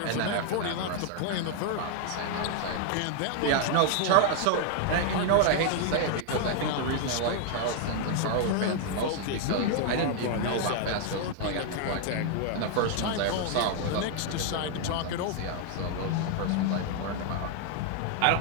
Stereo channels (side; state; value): both; different; correlation 0.00